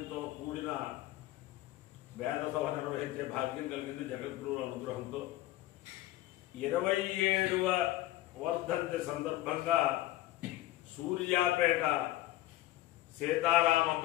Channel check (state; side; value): quieter; right; 15.9 dB